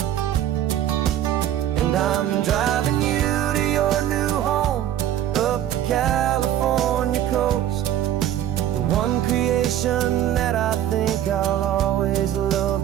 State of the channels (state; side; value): quieter; left; 11.6 dB